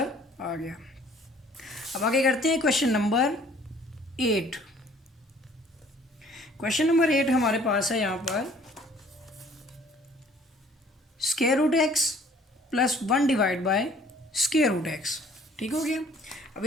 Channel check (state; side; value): normal; both; correlation 0.56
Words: आ गया। अब आगे करते हैं क्वेश्चन नंबर 8। क्वेश्चन नंबर 8 हमारे पास है यहाँ पर, square root x plus 1 divide by square root x, ठीक हो गया। अब